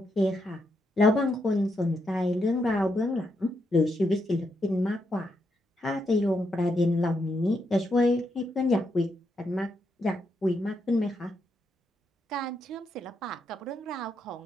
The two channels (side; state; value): both; normal; correlation 0.80